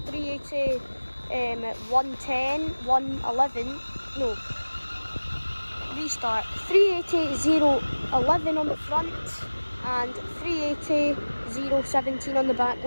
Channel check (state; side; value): inverted; both; correlation -1.00